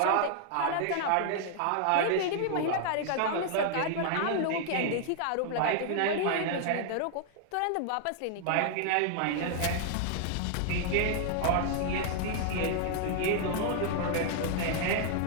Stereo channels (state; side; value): different; both; correlation 0.00